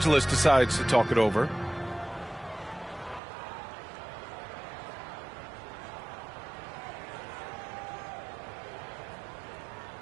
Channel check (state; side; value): drops out; left; at 3.2 s